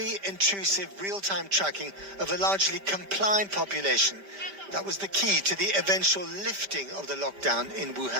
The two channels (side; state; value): left; late; 5.1 ms